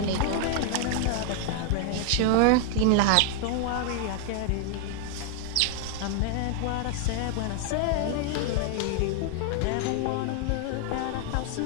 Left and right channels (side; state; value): both; different; correlation 0.00